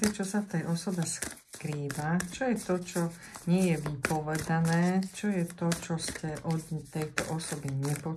čo sa v tej osobe skrýva, čo je to, čo nie je vypovedané, čo je to, čo ste od tejto osoby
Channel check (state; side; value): identical; both; correlation 1.00